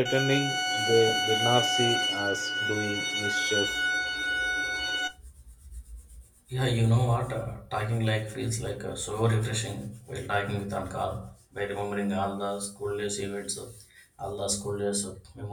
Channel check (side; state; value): both; identical; correlation 1.00